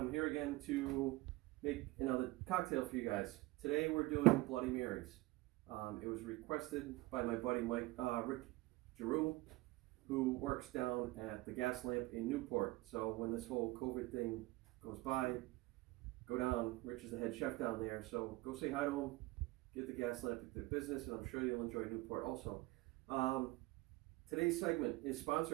here again to make another cocktail for you guys. Today we're doing Bloody Marys. It was requested by my buddy Rick Giroux, who works down at the Gas Lamp in Newport. So when this whole COVID thing goes by, go down. Rich is the head chef down there, so go say hi to him, get the Gas Lamp into the business, and I'm sure you'll enjoy Newport also. Today's segment is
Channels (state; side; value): quieter; left; 20.5 dB